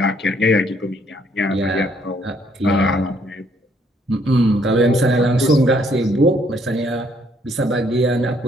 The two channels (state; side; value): normal; both; correlation 0.67